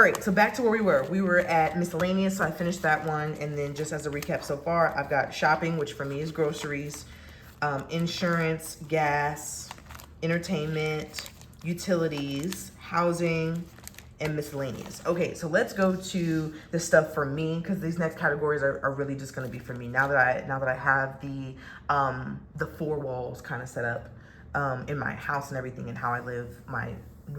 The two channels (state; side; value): identical; both; correlation 1.00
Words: right, so back to where we were. We were at miscellaneous, so I finished that one. And then just as a recap so far, I've got shopping, which for me is groceries, insurance, gas, entertainment, utilities, housing, and miscellaneous. Okay, so let's go to the stuff for me, because these next categories are really just going to be for me. Now that I have the four walls kind of set up in my house and everything, and how I live my